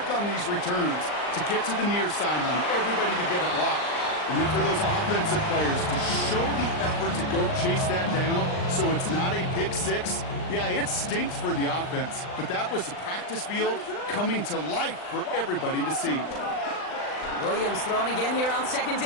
on these returns to get to the near sideline, everybody to get a block. And then for those offensive players to show the effort to go chase that down so it's not a pick 6, yeah, it stinks for the offense. But that was the practice field coming to life for everybody to see. Williams thrown again here on 2nd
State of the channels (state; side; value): late; right; 39 ms